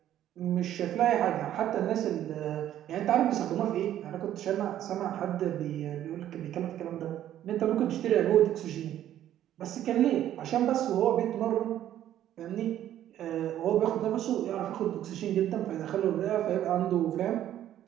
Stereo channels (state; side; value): quieter; left; 11.8 dB